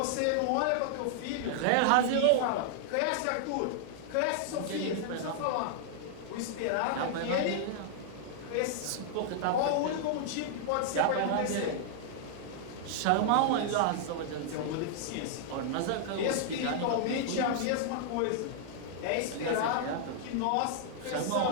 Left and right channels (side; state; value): both; different; correlation -0.01